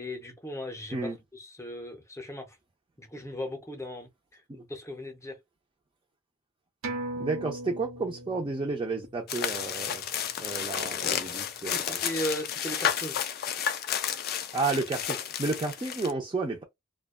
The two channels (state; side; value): normal; both; correlation 0.32